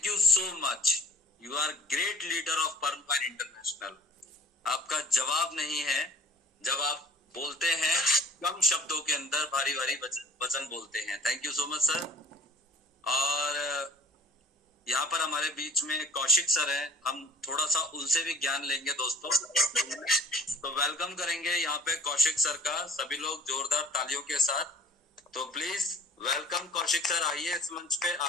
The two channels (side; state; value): both; normal; correlation 0.49